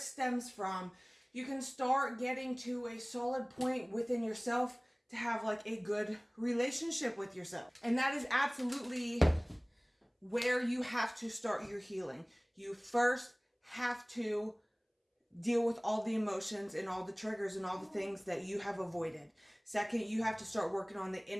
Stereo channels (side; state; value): both; identical; correlation 1.00